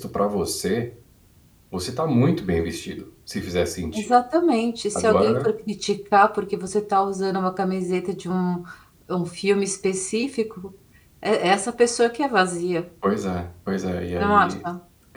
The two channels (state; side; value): identical; both; correlation 1.00